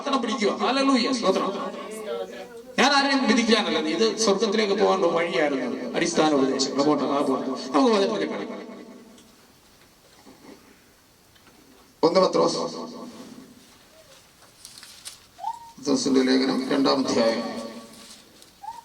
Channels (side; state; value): both; identical; correlation 1.00